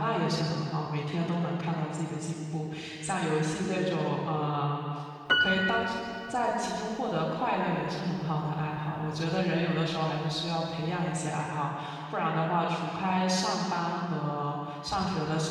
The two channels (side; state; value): both; identical; correlation 1.00